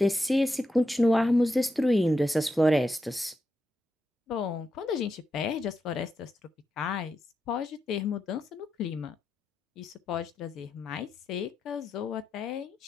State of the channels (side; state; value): both; normal; correlation 0.86